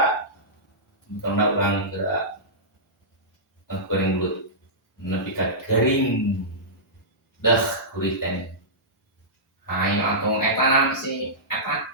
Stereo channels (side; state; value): both; normal; correlation -0.16